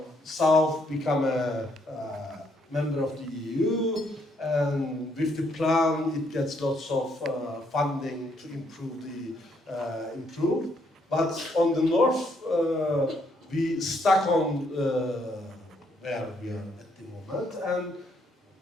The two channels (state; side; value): normal; both; correlation 0.72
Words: South became a member of the EU, and with the plan it gets lots of funding to improve. But on the north, we stuck on where we are at the moment and